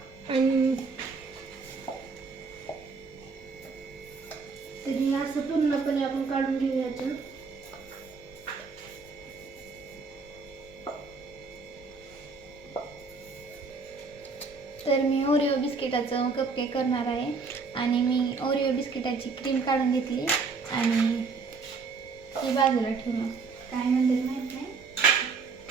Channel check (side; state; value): left; quieter; 4.6 dB